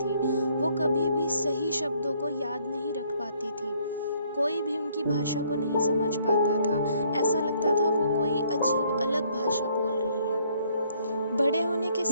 वो कभी भी सही शब्दों को याद नहीं रख पाती थी। कोई भी उनकी भाषा को नहीं समझ पाता था। ऐसा लगता था वो कोई अजीब अलग भाषा बोल रही हैं। बड़े होने के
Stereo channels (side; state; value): both; inverted; correlation -0.65